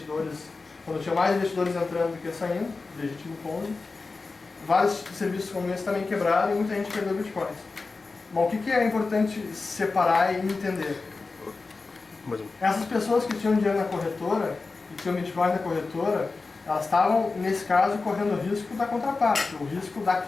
quando tinha mais investidores entrando do que saindo, legítimo Ponzi. Vários serviços como esse também quebraram e muita gente perdeu bitcoins. Bom, o que é importante separar e entender? Essas pessoas que tinham dinheiro na corretora, que tinham bitcoin na corretora, elas estavam, nesse caso, correndo o risco da contraparte, o risco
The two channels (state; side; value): quieter; right; 3.9 dB